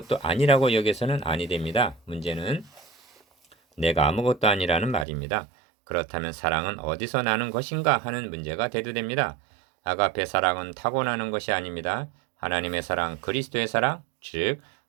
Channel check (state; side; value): drops out; left; at 5.1 s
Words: 아니라고 여겨서는 아니 됩니다. 문제는 내가 아무것도 아니라는 말입니다. 그렇다면 사랑은 어디서 나는 것인가 하는 문제가 대두됩니다. 아가페 사랑은 타고나는 것이 아닙니다. 하나님의 사랑, 그리스도의 사랑, 즉